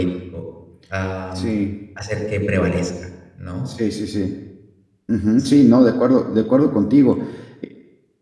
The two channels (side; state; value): both; identical; correlation 1.00